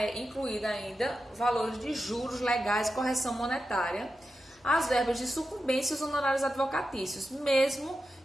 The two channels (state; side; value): normal; both; correlation 0.90